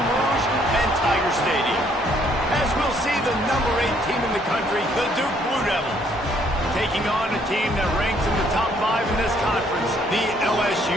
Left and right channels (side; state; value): both; normal; correlation 0.66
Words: Rouge and Tiger Stadium. As we'll see the number 8 team in the country, the Duke Blue Devils, taking on a team that ranks in the top 5 in this conference, the